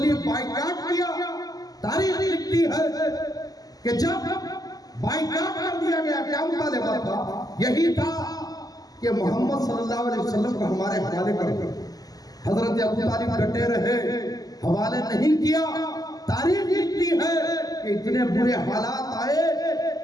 بائیکاٹ کیا۔ تاریخ لکھتی ہے کہ جب بائیکاٹ کر دیا گیا، کیا مطالبہ تھا؟ یہی تھا کہ محمد صلی اللہ علیہ وسلم کو ہمارے حوالے کر دو۔ حضرت ابو طالب ڈٹے رہے، حوالے نہیں کیا۔ تاریخ لکھتی ہے کہ اتنے برے حالات آئے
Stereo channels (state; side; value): late; right; 0.18 ms